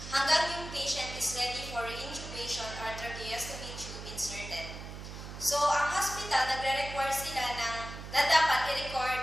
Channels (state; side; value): noise; right; hum, 10 dB below the sound